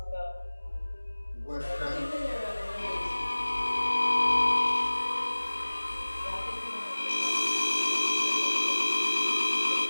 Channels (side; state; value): both; inverted; correlation -1.00